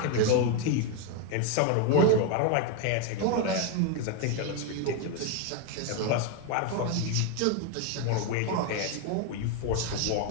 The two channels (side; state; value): both; different; correlation 0.01